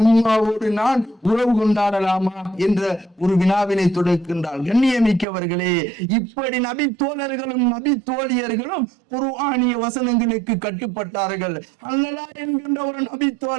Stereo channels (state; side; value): drops out; left; at 5.2 s